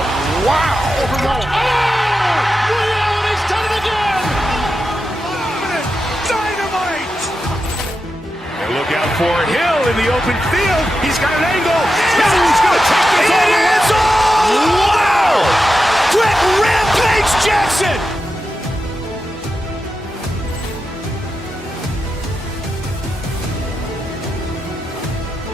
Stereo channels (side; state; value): both; normal; correlation 0.89